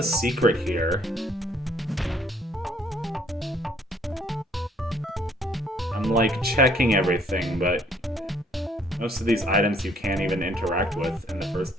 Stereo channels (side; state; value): both; normal; correlation 0.63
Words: secret here? I'm, like, checking everything, but most of these items you can't even interact with in the first